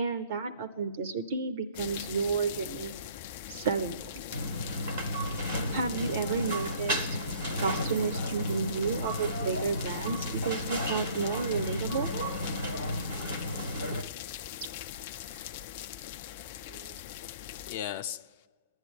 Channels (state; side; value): inverted; both; correlation -0.54